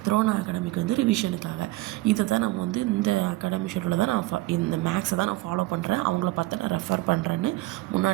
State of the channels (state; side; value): quieter; left; 19.2 dB